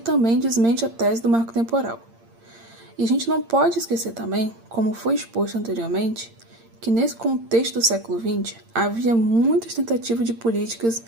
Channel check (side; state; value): left; late; 8.8 ms